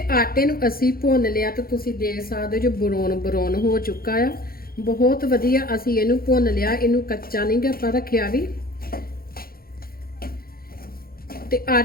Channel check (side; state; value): right; late; 0.43 ms